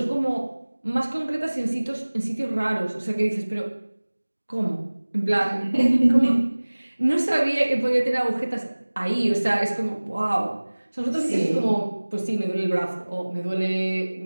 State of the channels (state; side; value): inverted; both; correlation -1.00